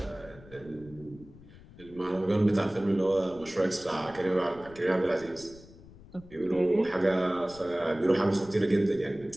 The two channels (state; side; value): noise; left; rumble, 21 dB below the sound